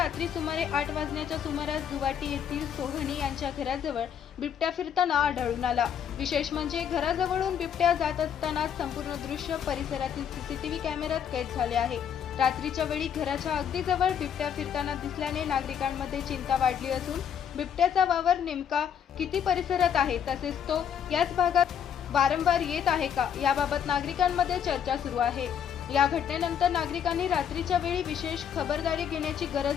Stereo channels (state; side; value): quieter; right; 8.4 dB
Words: सुमारे 8 वाजण्याच्या सुमारास जुवाटी येथील सोहनी यांच्या घराजवळ बिबट्या फिरताना आढळून आला। विशेष म्हणजे घराजवळून बिबट्या जात असताना संपूर्ण दृश्य परिसरातील सीसीटीव्ही कॅमेऱ्यात कैद झाले आहे। रात्रीच्या वेळी घराच्या अगदी जवळ बिबट्या फिरताना दिसल्याने नागरिकांमध्ये चिंता वाढली असून बिबट्याचा वावर नेमका किती परिसरात आहे तसेच तो याच भागात वारंवार येत आहे का याबाबत नागरिकांमध्ये चर्चा सुरू आहे। या घटनेनंतर नागरिकांनी रात्रीच्या वेळी विशेष खबरदारी घेण्याची